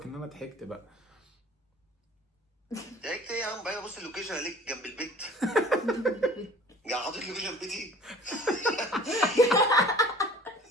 ان انا ضحكت بقى. ضحكت ايه يا عم؟ بقى بص اللوكيشن عليك جنب البيت. جاي حاطط لوكيشن بيتي.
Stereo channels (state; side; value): normal; both; correlation 0.47